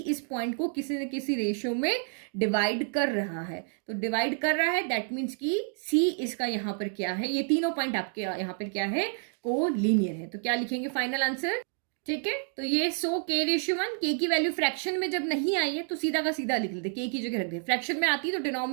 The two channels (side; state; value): left; silent; 56 dB below the other